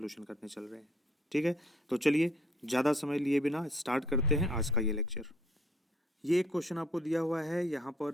करने चल रहे हैं। ठीक है, तो चलिए ज़्यादा समय लिए बिना स्टार्ट करते हैं आज का ये लेक्चर। ये एक क्वेश्चन आपको दिया हुआ है, यहाँ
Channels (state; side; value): normal; both; correlation 0.62